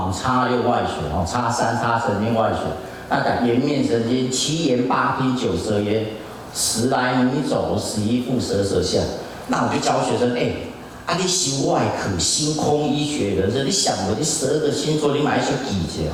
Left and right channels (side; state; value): both; identical; correlation 1.00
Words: 5擦6外旋哦，擦3擦神经外旋。那讲颜面神经，7言8听9舌咽，10来米走11腹舌舌下。那我就教学生你修外科星空医学人生，你想过你12个星座，你买一些记者